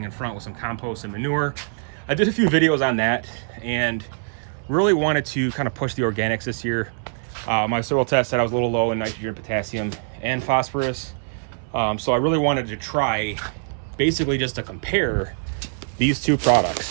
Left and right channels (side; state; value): left; silent; 59 dB below the other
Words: in front with some compost and manure. I did a few videos on that and really wanted to kind of push the organics this year. My soil test said I was a little low in nitrogen, potassium, and phosphorus. So I really wanted to try basically just to compare these two